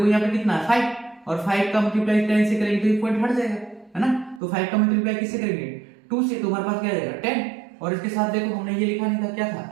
यहाँ पे कितना है 5 और 5 का मल्टीप्लाई 10 से करेंगे तो ये पॉइंट हट जाएगा है ना, तो 5 का मल्टीप्लाई किससे करेंगे 2 से, तो हमारे पास क्या जाएगा 10 और इसके साथ देखो हमने ये लिखा नहीं था क्या था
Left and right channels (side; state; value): left; drops out; at 4.4 s